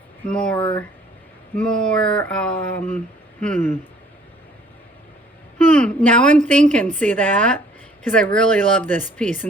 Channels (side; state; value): both; normal; correlation 0.58